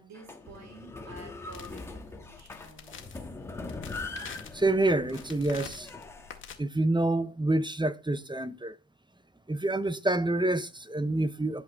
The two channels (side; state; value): both; normal; correlation 0.77